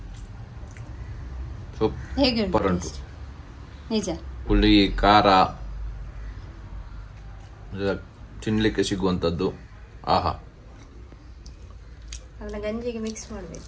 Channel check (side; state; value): both; identical; correlation 1.00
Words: ಸೂಪರ್ ಉಂಟು. ನಿಜ, ಹುಳಿ ಖಾರ ತಿನ್ಲಿಕ್ಕೆ ಸಿಗುವಂಥದ್ದು. ಆಹಾ, ಅದನ್ನ ಗಂಜಿಗೆ ಮಿಕ್ಸ್